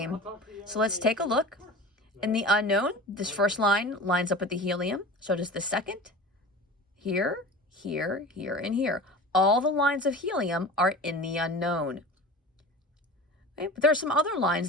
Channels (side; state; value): both; normal; correlation 0.35